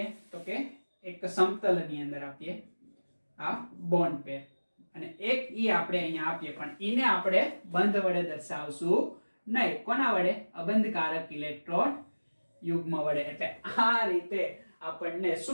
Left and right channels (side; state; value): both; inverted; correlation -1.00